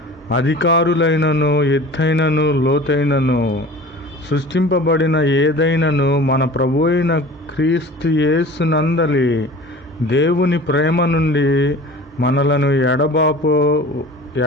అధికారులైనను, ఎత్తైనను, లోతైనను, సృష్టింపబడిన ఏదైనను మన ప్రభు అయిన క్రీస్తు యేసునందలి దేవుని ప్రేమ నుండి మనలను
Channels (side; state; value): both; normal; correlation 0.41